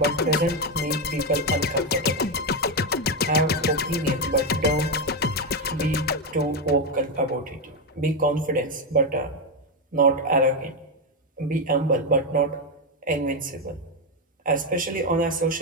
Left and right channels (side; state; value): both; normal; correlation 0.07